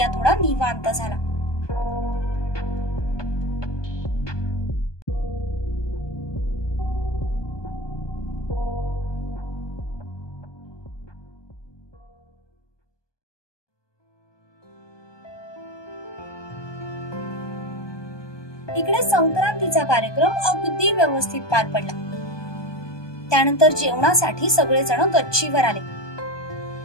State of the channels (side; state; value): right; late; 1.2 ms